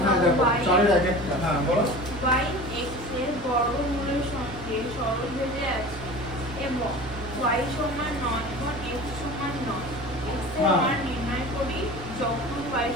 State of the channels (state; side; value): normal; both; correlation 0.37